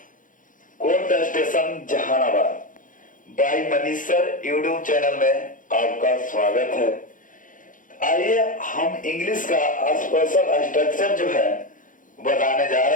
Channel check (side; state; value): right; late; 0.38 ms